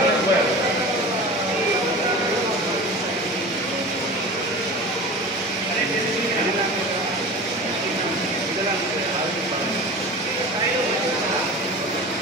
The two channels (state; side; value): normal; both; correlation 0.35